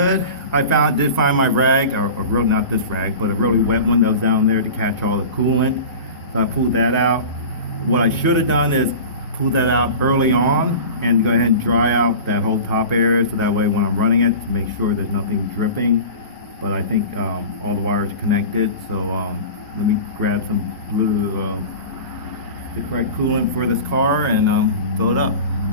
I did find my rag, or really not this rag, but a really wet one that was down there to catch all the coolant. So I pulled that out. What I should have done is pull that out early on and go ahead and dry out that whole top area, so that way when I'm running it, to make sure there's nothing dripping. But I think all the wires are connected, so let me grab some blue, the correct coolant for this car, and fill it up.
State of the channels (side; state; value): both; inverted; correlation -0.35